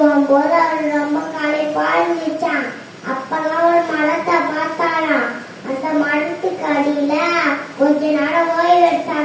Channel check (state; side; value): identical; both; correlation 1.00